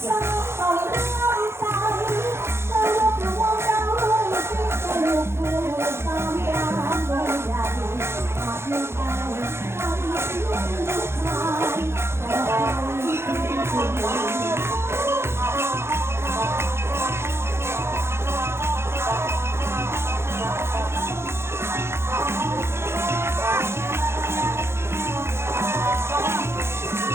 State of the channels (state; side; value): late; left; 0.12 ms